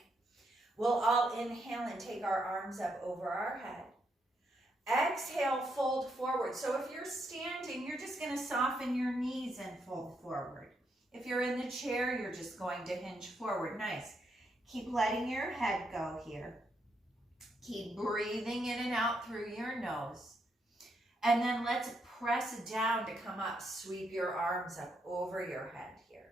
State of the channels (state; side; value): normal; both; correlation 0.78